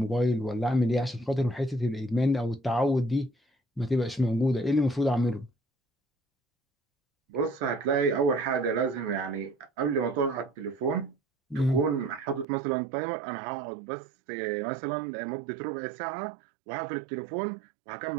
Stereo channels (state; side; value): drops out; left; at 12.5 s